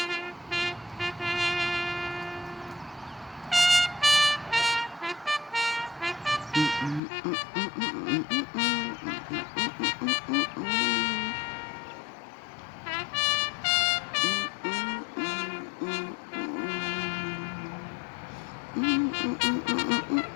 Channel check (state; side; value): drops out; right; at 7.0 s